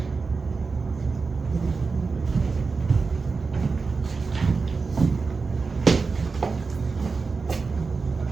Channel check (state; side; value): quieter; left; 4.5 dB